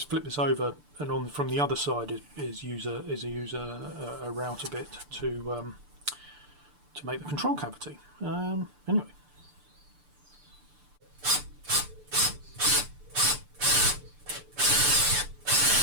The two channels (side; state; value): left; late; 6.8 ms